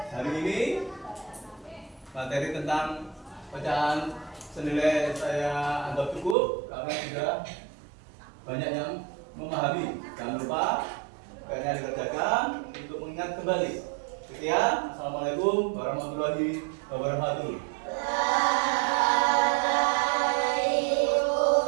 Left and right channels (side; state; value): left; drops out; at 6.4 s